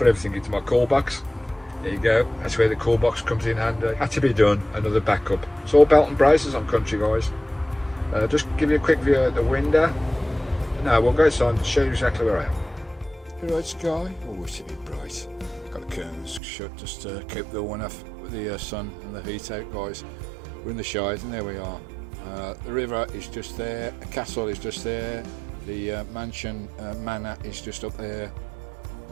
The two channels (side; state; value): left; drops out; at 16.4 s